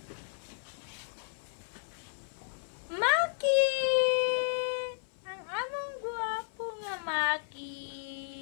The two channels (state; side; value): silent; right; 56 dB below the other